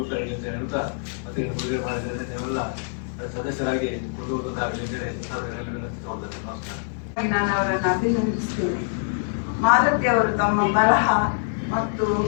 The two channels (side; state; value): right; silent; digital silence